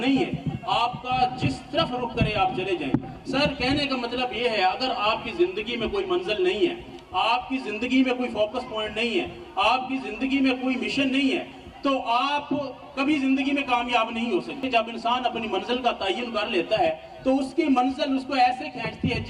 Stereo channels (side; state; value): both; identical; correlation 1.00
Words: है, आपका जिस तरफ रुख करे आप चले जाएं। सर कहने का मतलब ये है, अगर आपकी जिंदगी में कोई मंजिल नहीं है, आपकी जिंदगी में कोई फोकस पॉइंट नहीं है, आपकी जिंदगी में कोई मिशन नहीं है, तो आप कभी जिंदगी में कामयाब नहीं हो सकते। जब इंसान अपनी मंजिल का तयन कर लेता है तो उसकी मंजिल उसको ऐसे खींचती है